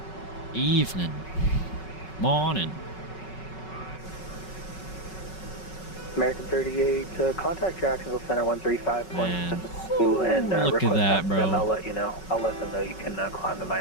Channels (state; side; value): late; right; 5.3 ms